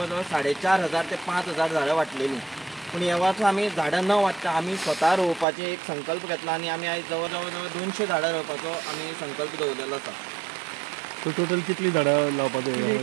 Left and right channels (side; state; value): left; drops out; at 5.5 s